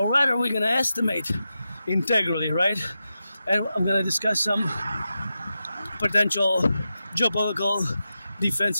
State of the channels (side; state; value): both; inverted; correlation -0.90